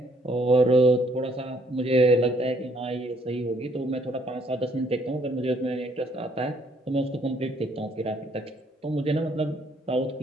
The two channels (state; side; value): normal; both; correlation 0.66